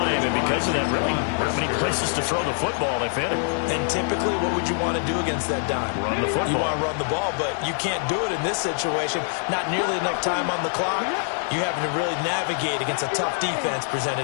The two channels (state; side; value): silent; right; 62 dB below the other